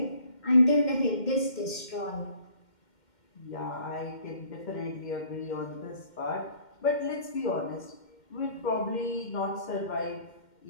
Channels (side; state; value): right; late; 2.1 ms